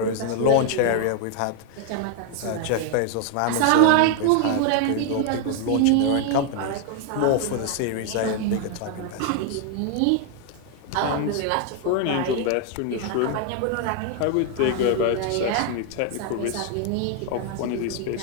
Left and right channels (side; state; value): both; different; correlation 0.00